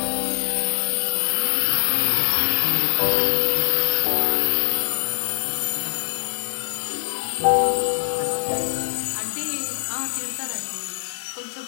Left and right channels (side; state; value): right; silent; digital silence